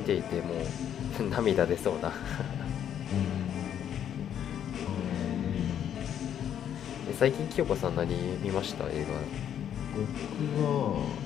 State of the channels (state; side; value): quieter; right; 9.6 dB